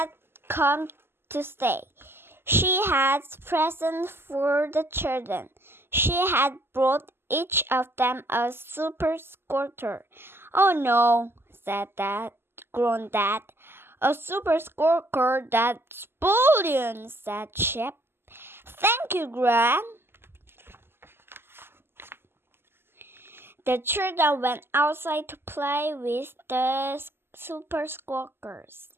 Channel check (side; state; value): left; late; 0.11 ms